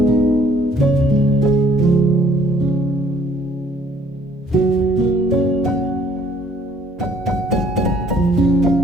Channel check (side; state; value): both; normal; correlation 0.61